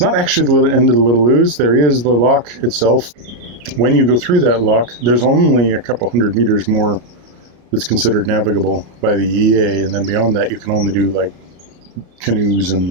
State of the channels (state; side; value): late; left; 33 ms